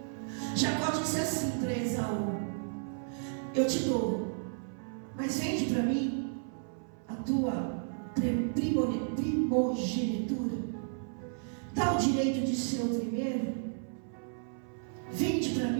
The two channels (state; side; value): silent; left; 56 dB below the other